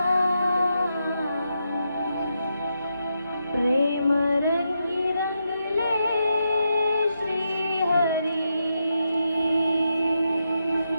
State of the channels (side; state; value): both; inverted; correlation -0.84